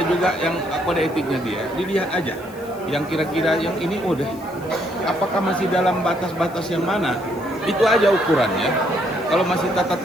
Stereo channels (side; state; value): left; noise; hiss, 24 dB below the sound